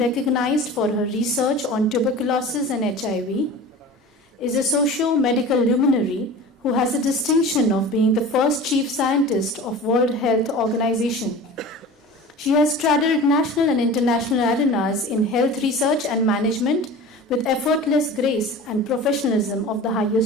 for her research on tuberculosis and HIV, is a socio-medical luminary who has the distinction of being the first chief scientist of World Health Organization. She has straddled national and international arenas in health research and management with effortless grace and professionalism of the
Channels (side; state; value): both; normal; correlation 0.37